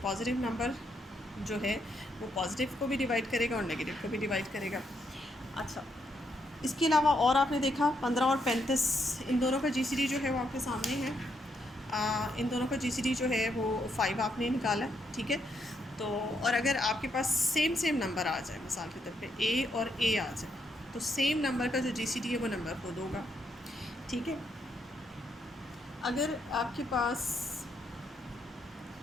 नंबर जो है वो पॉजिटिव को भी डिवाइड करेगा और नेगेटिव को भी डिवाइड करेगा। अच्छा, इसके अलावा और आपने देखा 15 और 35, इन दोनों का जीसीडी जो है वो आपके सामने है। इन दोनों का जीसीडी जो है वो 5 आपने निकाला, ठीक है। तो और अगर आपके पास सेम नंबर आ जाए, मिसाल के तौर पे ए और ए आ जाए, तो सेम नंबर का जो जीसीडी है वो नंबर खुद होगा, ठीक है। अगर आपके पास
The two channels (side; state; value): both; normal; correlation 0.77